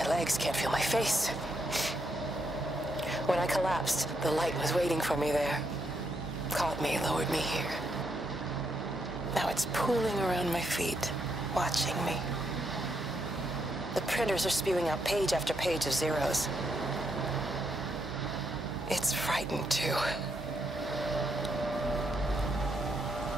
legs, can't feel my face. When I collapsed, the light was waiting for me there. Caught me, lowered me here. Now it's pooling around my feet, watching me. The printers are spewing out page after page of zeros. It's frightened too.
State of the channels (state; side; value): normal; both; correlation 0.78